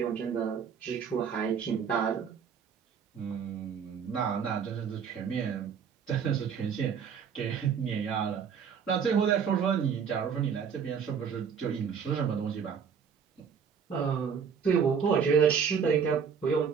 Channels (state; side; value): quieter; left; 6.9 dB